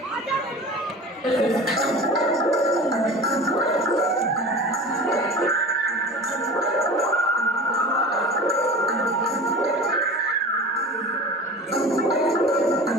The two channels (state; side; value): normal; both; correlation 0.36